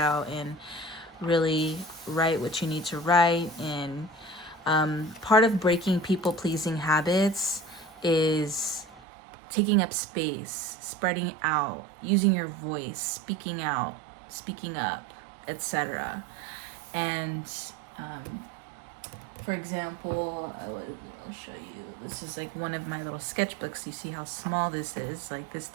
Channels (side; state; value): left; drops out; at 9.1 s